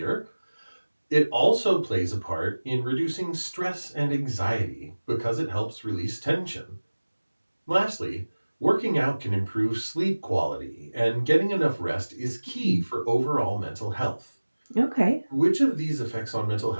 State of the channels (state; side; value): inverted; both; correlation -1.00